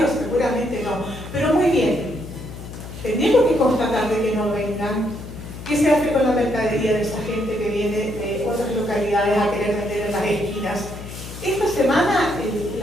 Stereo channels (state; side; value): noise; left; hum, 12 dB below the sound